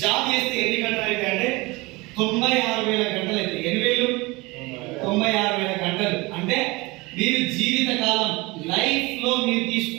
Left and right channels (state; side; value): quieter; left; 23.5 dB